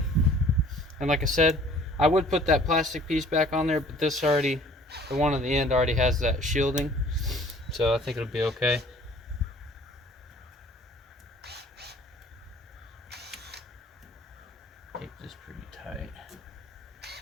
And like I said, I would put that plastic piece back on there, but this already, the one on the end already has that shielding. So I think it'll be okay. Tape this pretty tight.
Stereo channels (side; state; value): both; normal; correlation 0.53